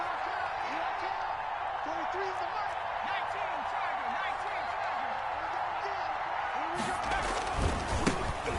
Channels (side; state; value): both; identical; correlation 1.00